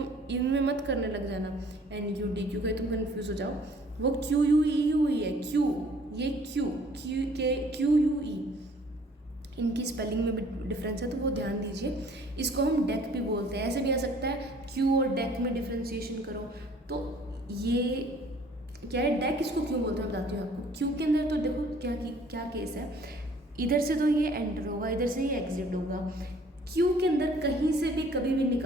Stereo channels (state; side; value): normal; both; correlation 0.56